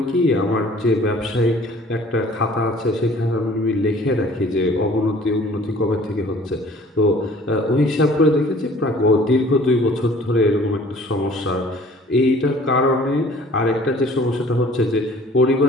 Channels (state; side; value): normal; both; correlation 0.52